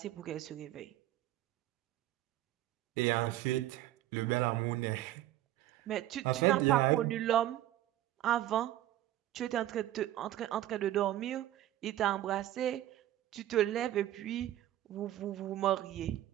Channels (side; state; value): left; quieter; 13.7 dB